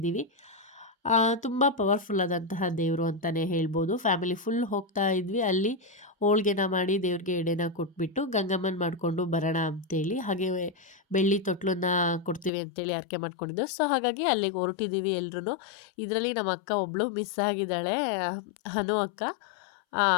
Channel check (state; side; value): drops out; right; at 12.5 s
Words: ತುಂಬ ಪವರ್ಫುಲ್ ಆದಂತಹ ದೇವರು ಅಂತಲೇ ಹೇಳ್ಬೋದು. ಫ್ಯಾಮಿಲಿ ಫುಲ್ ಹೋಗ್ತಾ ಇದ್ವಿ. ಅಲ್ಲಿ ಹೋಳ್ಗೆನ ಮಾಡಿ ದೇವ್ರಿಗೆ ಎಡೆನ ಕೊಟ್ಬಿಟ್ಟು ಗಂಗಮ್ಮನ ಮಾಡಿಕೊಂಡು ಬರೋಣ ಅಂತೇಳಿ, ಹಾಗೆ ಬೆಳ್ಳಿ ತೊಟ್ಲನ್ನ ಕೊಡ್ತೀವಿ ಅಂತೇಳಿ ಹರಕೆ ಮಾಡ್ಕೊಂಡಿದ್ದು. ಸೊ ಹಾಗಾಗಿ ಅಲ್ಲಿಗೆ ಹೊರಟಿದ್ದೀವಿ ಎಲ್ರೂ. ಇದರಲ್ಲಿ ನಮ್ಮ ಅಕ್ಕ ಒಬ್ಬಳು ಮಿಸ್ ಆಗಿದ್ದಾಳೆ, ಹನು ಅಕ್ಕ.